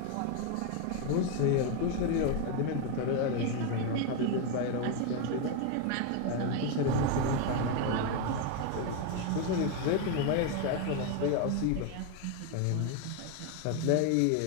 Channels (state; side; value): different; both; correlation 0.02